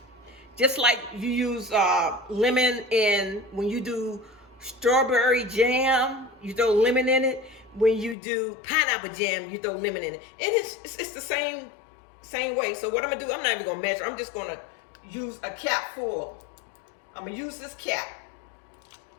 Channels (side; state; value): right; drops out; at 8.2 s